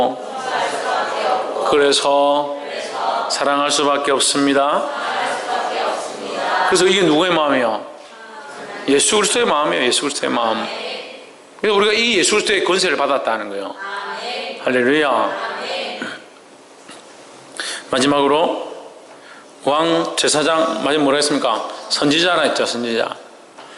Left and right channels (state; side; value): identical; both; correlation 1.00